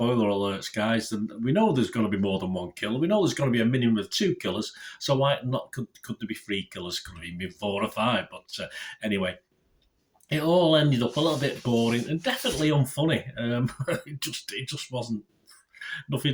alerts, guys. We know there's going to be more than one killer. We know there's going to be a minimum of 2 killers. So why not? Could there be 3 killers? Could there be 4 or 5? But anyway. It all ended up a little bit boring and definitely unfunny. It just wasn't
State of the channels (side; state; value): both; identical; correlation 1.00